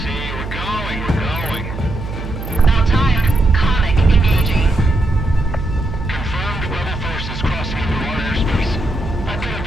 We're going. About time. Comic engaging. Confirmed rebel forces crossing into our airspace. I've got a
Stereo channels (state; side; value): noise; right; hum, 8 dB below the sound